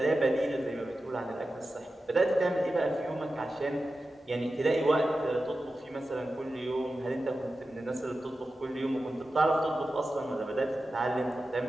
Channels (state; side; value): normal; both; correlation 0.93